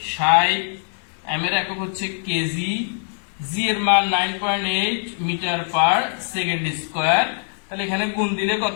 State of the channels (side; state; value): right; silent; 64 dB below the other